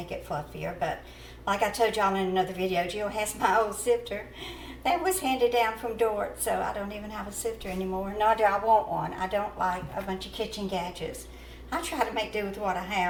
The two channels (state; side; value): identical; both; correlation 1.00